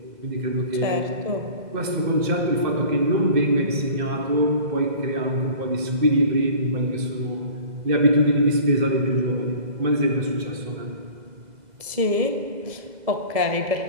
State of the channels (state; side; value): late; left; 2.0 ms